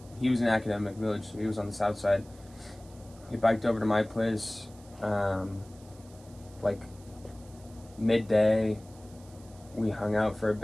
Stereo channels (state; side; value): noise; right; hiss, 25 dB below the sound